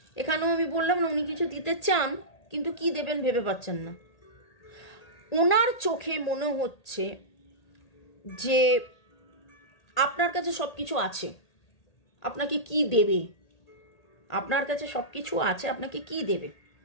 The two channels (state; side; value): late; right; 1.8 ms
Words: এখানেও আমি বললাম না, উনি কিছু দিতে চান কিন্তু কি দেবেন ভেবে পাচ্ছেন না। ওনার চোখে মনে হচ্ছে যে আপনার কাছে সব কিছু আছে, আপনাকে কি দেবে, আপনার কাছে সব কিছু আছে, আপনাকে কি দেবে,